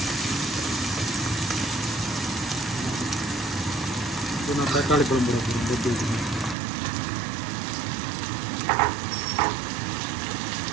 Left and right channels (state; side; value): drops out; left; at 6.6 s